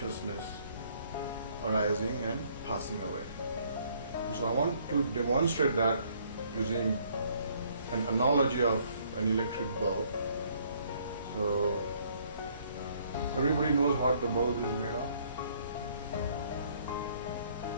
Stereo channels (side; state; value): both; inverted; correlation -0.64